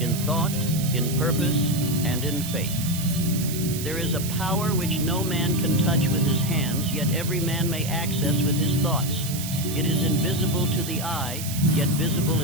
in thought, in purpose, and in faith. There is a power which no man can touch with his hands, yet every man may access with his thoughts. It is invisible to the eye, yet visible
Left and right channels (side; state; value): right; noise; hiss, 8 dB below the sound